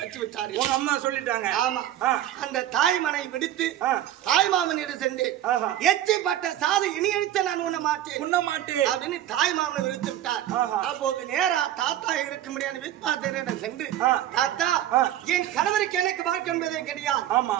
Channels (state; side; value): quieter; left; 12.4 dB